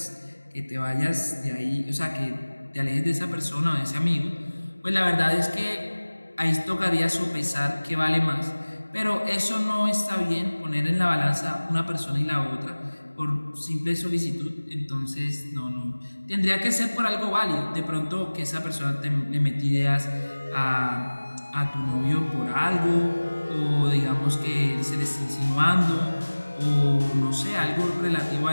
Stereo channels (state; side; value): inverted; both; correlation -1.00